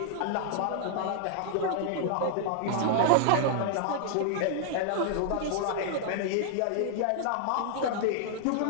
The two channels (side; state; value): both; different; correlation 0.00